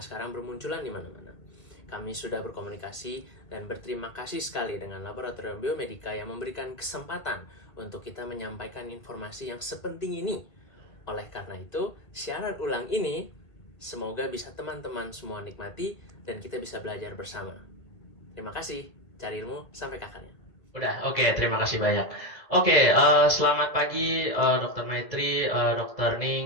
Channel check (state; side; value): late; right; 2.0 ms